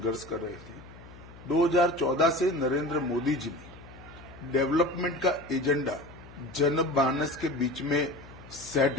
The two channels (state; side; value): noise; left; hum, 19 dB below the sound